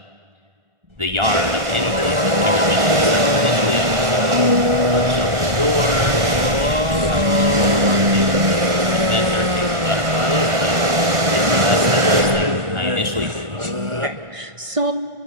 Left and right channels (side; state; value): left; late; 1.6 ms